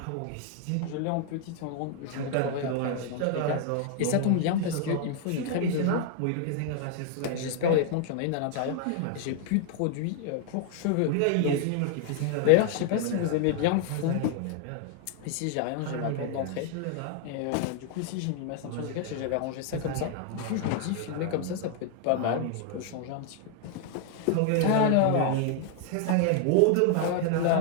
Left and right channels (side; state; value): both; different; correlation 0.00